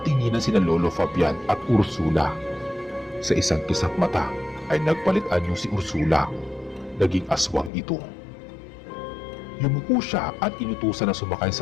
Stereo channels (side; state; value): right; drops out; at 7.7 s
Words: sina Lolo Fabian at Ursula. Sa isang kisap mata ay nagpalit anyo si Ursula. Naging aswang ito. Yumuko siya at inutusan na sumakay